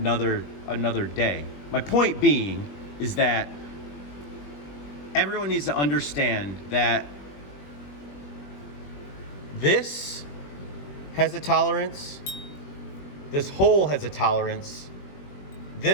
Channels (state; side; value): late; right; 21 ms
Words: day. My point being is that everyone needs to understand that this has a tolerance, this hole has a tolerance,